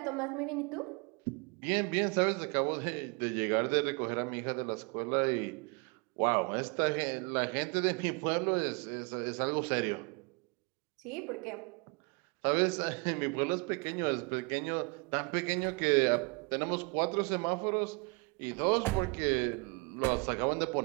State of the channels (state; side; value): quieter; left; 31.2 dB